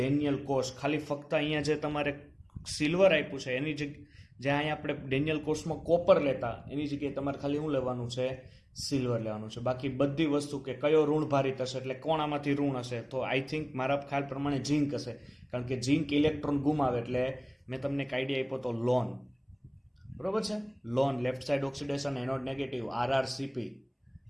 કોષ. ખાલી ફક્ત અહીંયા જે તમારે સિલ્વર આપ્યું છે એની જ્યાં અહીંયા આપણે ડેનિયલ કોષમાં કોપર લેતા એની જગ્યાએ તમારે ખાલી શું લેવાનું છે? સિલ્વર લેવાનું છે. બાકી બધી વસ્તુ કે કયો ઋણભારી થશે, એટલે કોણ આમાંથી ઋણ હશે? તો આઈ થિંક મારા ખ્યાલ પ્રમાણે ઝિંક હશે, કારણ કે ઝિંક ઇલેક્ટ્રોન ગુમાવે. એટલે મેં તમને એક આઈડિયા આપ્યો તો લોન, બરોબર છે, loan, left side oxidation, anode negative, RrCp,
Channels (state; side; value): identical; both; correlation 1.00